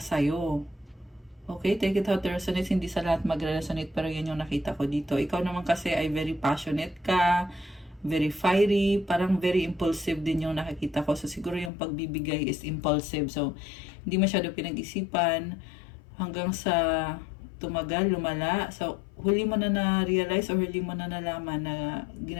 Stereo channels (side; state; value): right; drops out; at 11.7 s